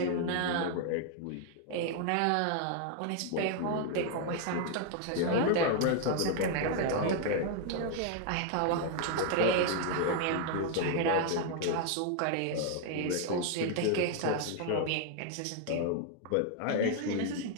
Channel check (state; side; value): different; both; correlation 0.00